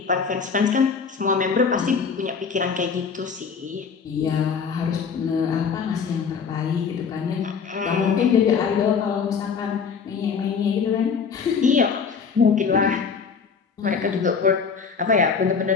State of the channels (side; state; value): right; quieter; 5.9 dB